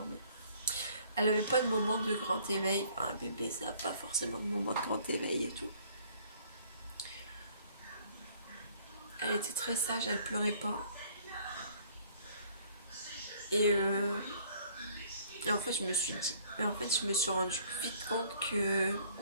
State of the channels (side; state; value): both; inverted; correlation -0.58